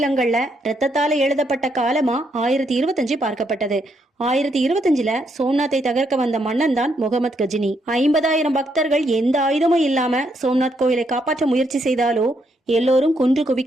ரத்தத்தால எழுதப்பட்ட காலமா 1025 பார்க்கப்பட்டது. 1025ல சோம்நாத்தை தகர்க்க வந்த மன்னன் தான் முகமது கஜினி. 50,000 பக்தர்கள் எந்த ஆயுதமும் இல்லாம சோம்நாத் கோயிலை காப்பாற்ற முயற்சி செய்தாலோ எல்லோரும் கொன்று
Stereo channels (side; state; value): both; normal; correlation 0.76